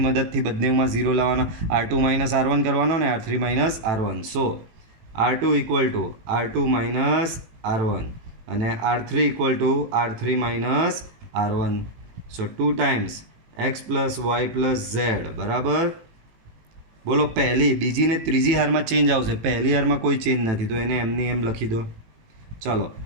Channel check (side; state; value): left; late; 18 ms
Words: મદદથી બંનેમાં 0 લાવવાના. R2 માઇનસ R1 કરવાનો ને R3 minus R1. So R2 equal to R2 minus R1 અને R3 equal to R3 minus R1. So 2 times x plus Y plus Z બરાબર. બોલો પહેલી, બીજી ને ત્રીજી હારમાં ચેન્જ આવશે, પહેલી હારમાં કોઈ ચેન્જ નથી તો એને એમની એમ લખી દો. ચાલો